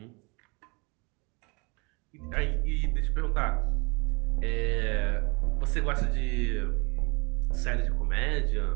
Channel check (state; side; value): quieter; left; 29.6 dB